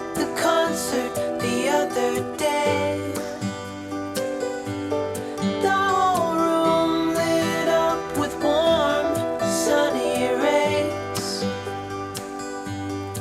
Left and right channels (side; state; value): both; identical; correlation 1.00